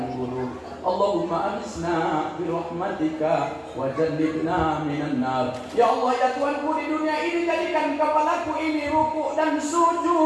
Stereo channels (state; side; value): identical; both; correlation 1.00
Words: buruk. Allahumma amisna birahmatika wa jannibna minan nar. Ya Allah, ya Tuhanku, di dunia ini jadikan kepalaku ini rukuk dan